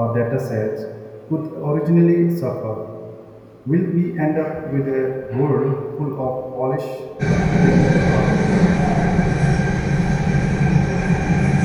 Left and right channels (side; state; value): both; identical; correlation 1.00